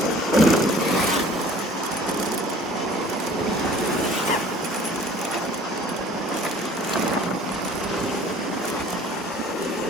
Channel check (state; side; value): normal; both; correlation 0.50